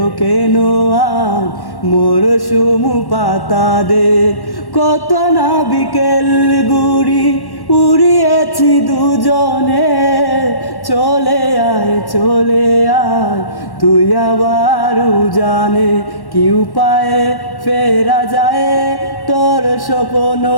কেন আর মরশুম পাতা দে। কত না বিকেল গুড়ি উড়িয়েছি দুজনে, চলে আয় চলে আয় তুই আবার জানে। কি উপায়ে ফেরা যায় তোর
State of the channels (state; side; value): late; right; 1.1 ms